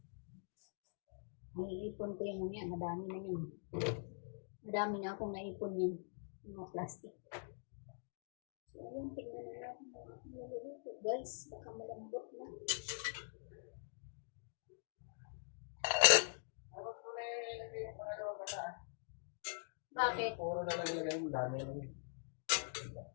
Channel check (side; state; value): right; silent; digital silence